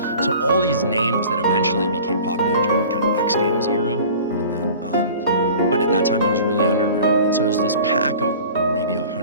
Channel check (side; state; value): both; inverted; correlation -0.43